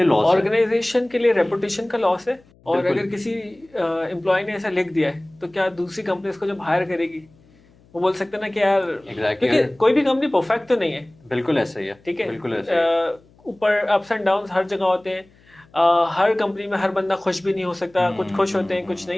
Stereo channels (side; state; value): left; noise; hum, 30 dB below the sound